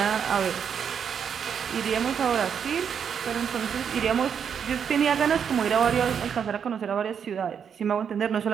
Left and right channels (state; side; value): quieter; left; 7.5 dB